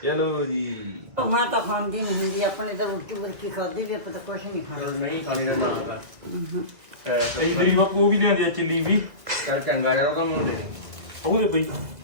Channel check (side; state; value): left; late; 2.0 ms